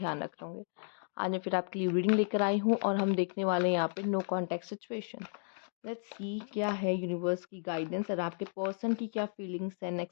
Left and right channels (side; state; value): right; silent; digital silence